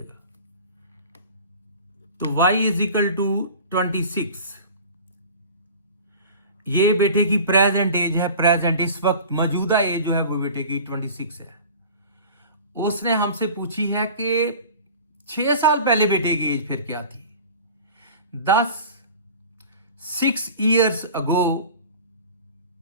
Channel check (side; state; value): both; inverted; correlation -0.40